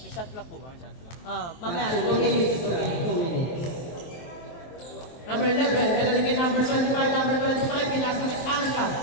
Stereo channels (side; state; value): right; late; 23 ms